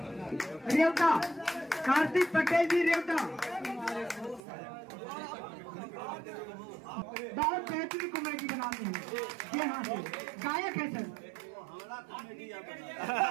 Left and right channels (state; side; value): drops out; left; at 4.4 s